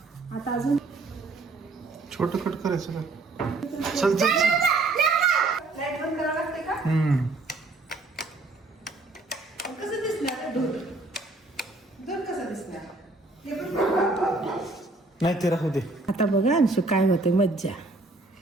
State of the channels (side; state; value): left; quieter; 3.2 dB